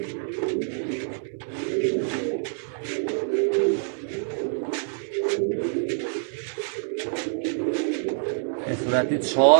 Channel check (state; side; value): silent; left; 61 dB below the other